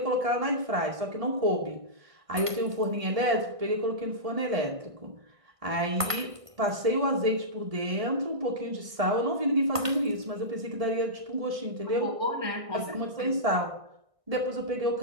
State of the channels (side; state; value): left; late; 1.6 ms